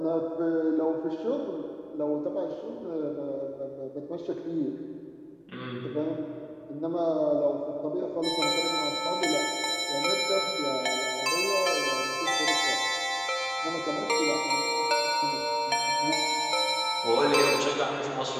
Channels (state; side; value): identical; both; correlation 1.00